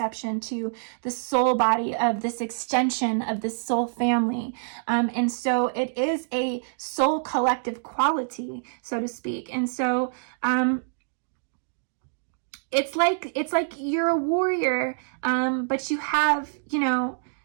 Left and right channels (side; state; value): left; silent; digital silence